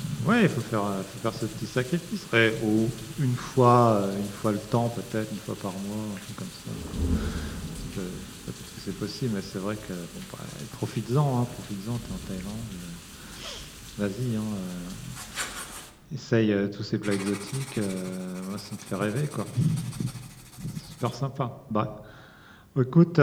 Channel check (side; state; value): both; identical; correlation 1.00